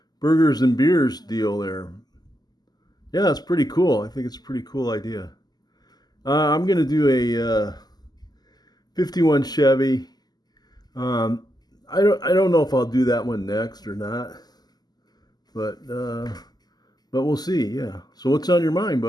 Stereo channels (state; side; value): late; right; 0.20 ms